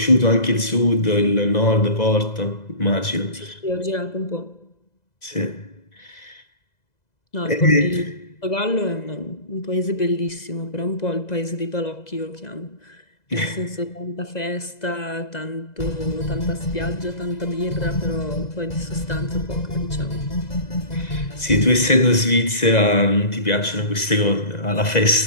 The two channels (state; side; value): late; right; 2.0 ms